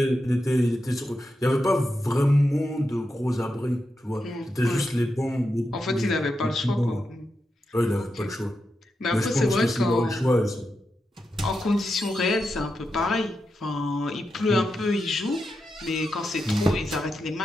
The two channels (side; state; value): both; normal; correlation 0.87